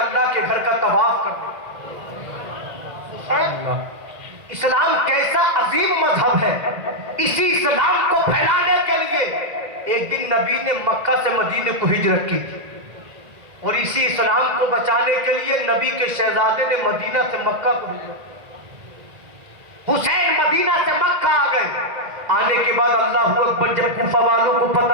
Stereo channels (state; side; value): late; left; 1.8 ms